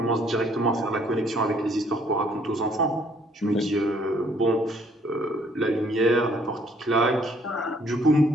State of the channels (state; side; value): normal; both; correlation 0.63